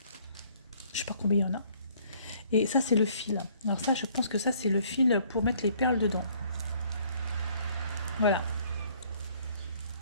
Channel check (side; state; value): both; inverted; correlation -0.61